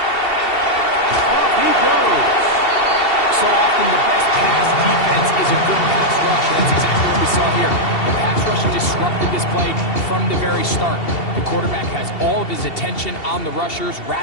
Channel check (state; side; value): late; right; 2.7 ms